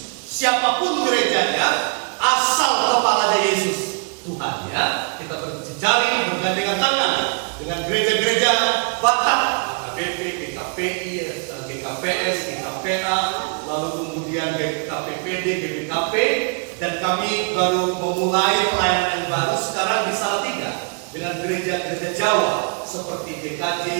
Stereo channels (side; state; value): left; quieter; 39.9 dB